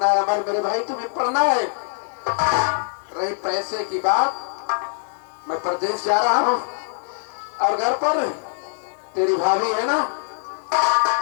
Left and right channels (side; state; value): right; silent; 64 dB below the other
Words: है अमर मेरे भाई, तुम्हें पढ़ना है। रही पैसे की बात, मैं प्रदेश जा रहा हूँ, और घर पर तेरी भाभी है ना,